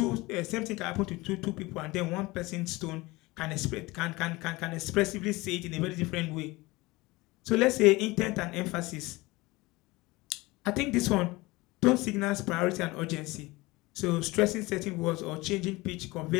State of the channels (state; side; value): quieter; right; 21.8 dB